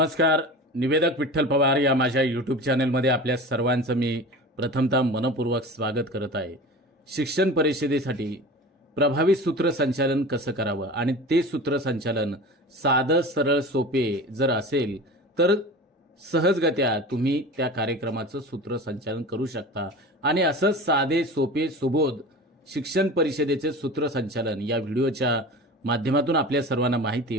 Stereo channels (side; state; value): both; normal; correlation 0.34